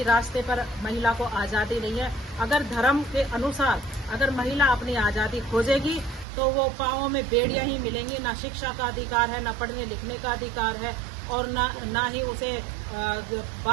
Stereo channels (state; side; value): drops out; left; at 6.2 s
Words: रास्ते पर महिला को आज़ादी नहीं है। अगर धर्म के अनुसार अगर महिला अपनी आज़ादी खोजेगी तो वो पाँवों में बेड़ियां ही मिलेंगी। ना शिक्षा का अधिकार है, ना पढ़ने लिखने का अधिकार है और ना ही उसे